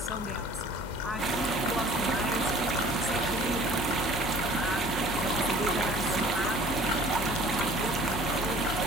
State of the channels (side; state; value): both; normal; correlation 0.49